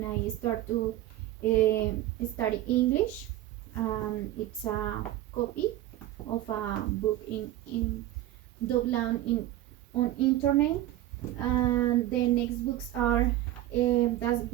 I start to study English. It's a copy of a book in download in on internet, and the next books are that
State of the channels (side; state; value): left; quieter; 14.3 dB